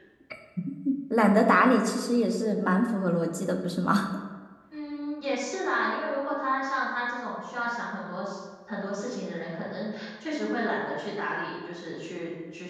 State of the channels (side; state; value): both; identical; correlation 1.00